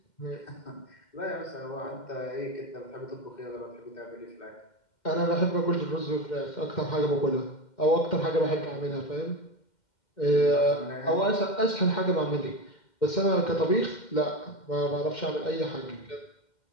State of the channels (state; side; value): late; right; 2.1 ms